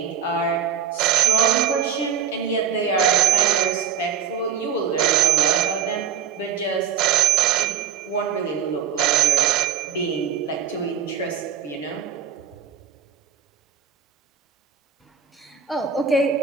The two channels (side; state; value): left; quieter; 8.0 dB